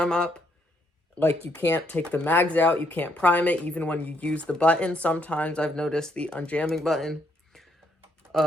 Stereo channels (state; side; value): normal; both; correlation 0.73